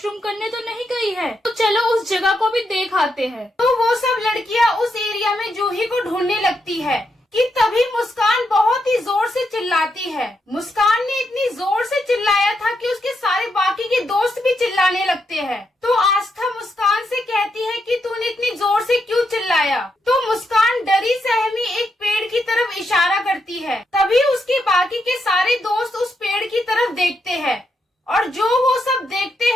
करने तो नहीं गई है, तो चलो उस जगह को भी देख आते हैं। तो वो सब लड़कियां उस एरिया में जूही को ढूंढने लगती है कि तभी मुस्कान बहुत ही जोर से चिल्लाती है। मुस्कान ने इतनी जोर से चिल्लाया था कि उसके सारे बाकी के दोस्त भी चिल्लाने लगते हैं। तो आस्था मुस्कान से कहती है कि तूने इतनी जोर से क्यों चिल्लाया। तो मुस्कान डरी सहमी एक पेड़ की तरफ इशारा करती है। तभी उसके बाकी के सारे दोस्त उस पेड़ की तरफ देखते हैं और जो वो सब देखते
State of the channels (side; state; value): both; normal; correlation 0.81